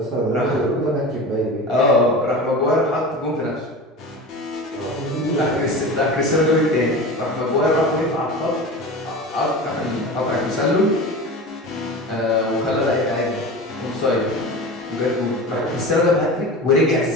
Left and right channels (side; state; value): both; normal; correlation 0.31